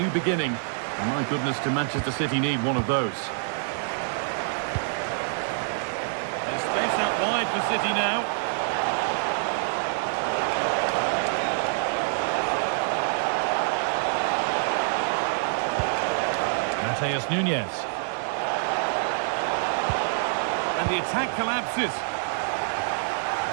beginning. And my goodness, do Manchester City need one of those. There's space out wide for City now. Mateus Nunes. And the attack collapses.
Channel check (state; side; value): silent; left; digital silence